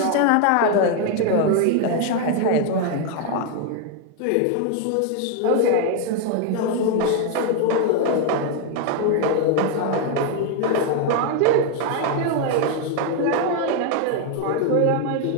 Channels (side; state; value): both; different; correlation 0.01